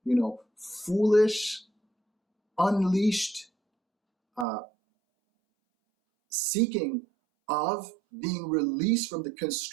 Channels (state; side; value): drops out; left; at 4.5 s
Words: foolish, unleashed seeking of being released from the